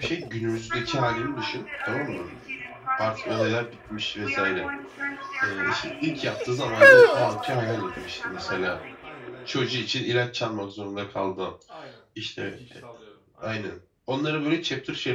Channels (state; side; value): identical; both; correlation 1.00